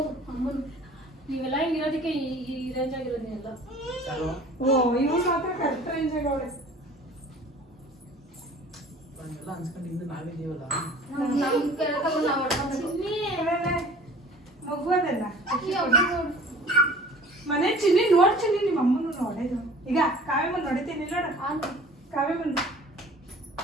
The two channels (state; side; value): normal; both; correlation 0.47